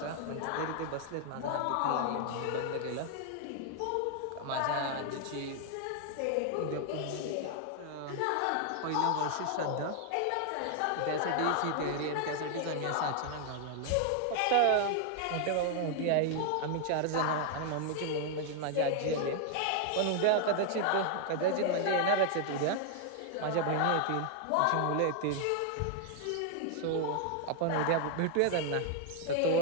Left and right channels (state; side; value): different; both; correlation 0.00